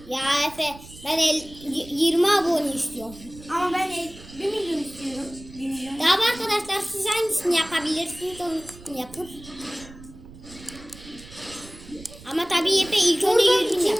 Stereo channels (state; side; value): noise; right; rumble, 19 dB below the sound